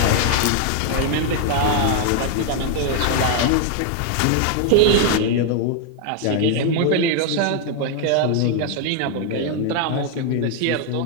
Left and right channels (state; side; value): different; both; correlation 0.00